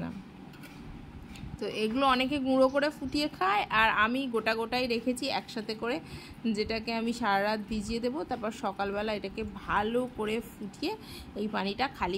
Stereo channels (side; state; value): both; identical; correlation 1.00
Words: না। তো এগুলো অনেকে গুঁড়ো করে ফুটিয়ে খায়, আর আমি গোটাই রেখেছি একসাথে করে, যেটাকে আমি সারা রাত ভিজিয়ে দেবো। তারপর সকালবেলা এটাকে ভালো করে ফুটিয়ে এই পানিটা খালি